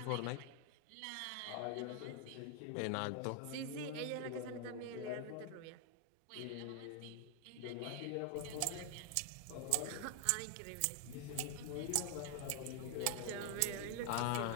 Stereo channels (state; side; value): different; both; correlation 0.00